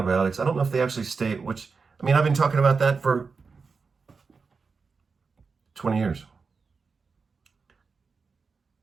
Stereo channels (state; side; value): quieter; left; 4.9 dB